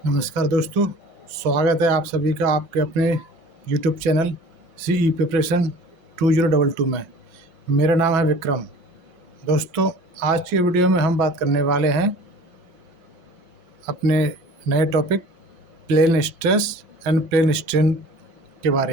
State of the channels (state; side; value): late; left; 5.5 ms